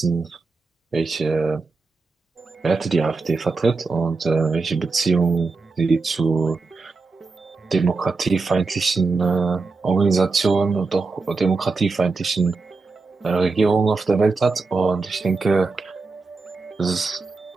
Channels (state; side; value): quieter; left; 4.0 dB